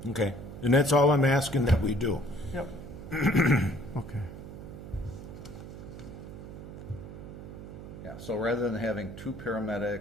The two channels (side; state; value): right; noise; hum, 12 dB below the sound